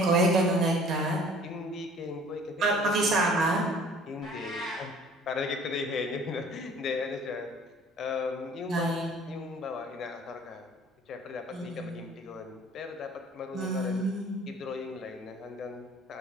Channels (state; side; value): normal; both; correlation 0.51